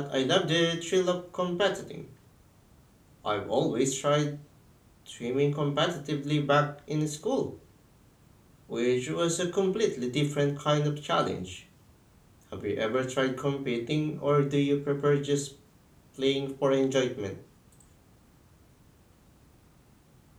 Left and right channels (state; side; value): identical; both; correlation 1.00